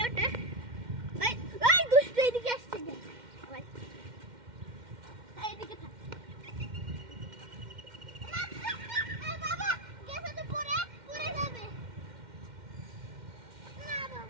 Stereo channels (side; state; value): left; late; 2.1 ms